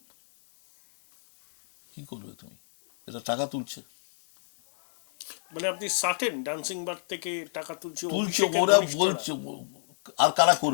কি করবে তুমি? এটা টাকা তুলছে, মানে আপনি সার্টেন ডান্সিং বার থেকে টাকা তুলছে, ওরা বলছে। আর কারা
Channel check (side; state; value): right; silent; digital silence